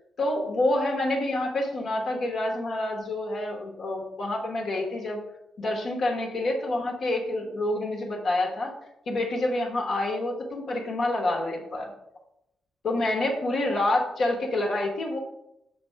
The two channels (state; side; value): normal; both; correlation 0.84